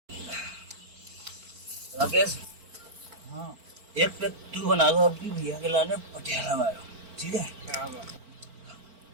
राकेश, हाँ एक पैक तू बना दो अपनी भैया के लाने पटियाला मारो, ठीक है?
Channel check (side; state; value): left; late; 4.3 ms